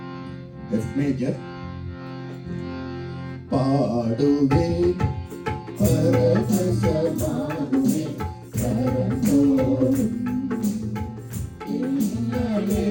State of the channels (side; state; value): both; identical; correlation 1.00